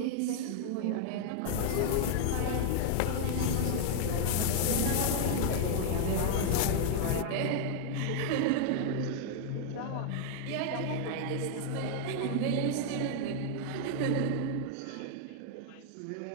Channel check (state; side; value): different; both; correlation 0.00